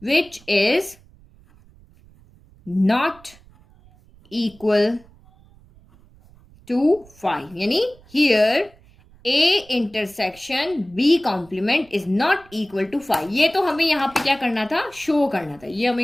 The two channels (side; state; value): right; noise; rumble, 27 dB below the sound